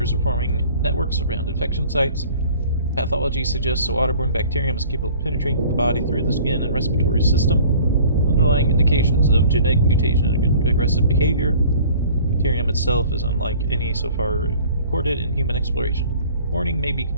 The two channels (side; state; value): both; inverted; correlation -0.49